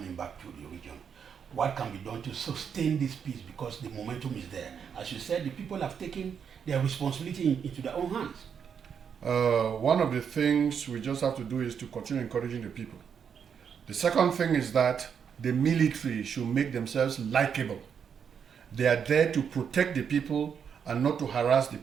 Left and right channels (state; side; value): quieter; left; 7.3 dB